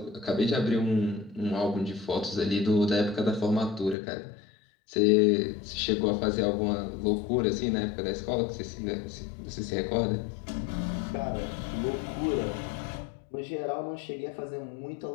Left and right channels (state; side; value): drops out; right; at 4.0 s